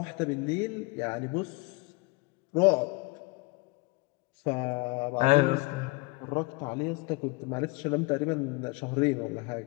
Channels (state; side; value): quieter; right; 26.1 dB